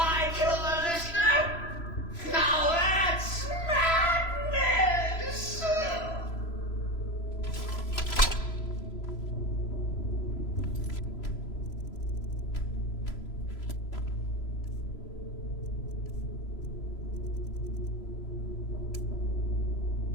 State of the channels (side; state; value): right; late; 3.0 ms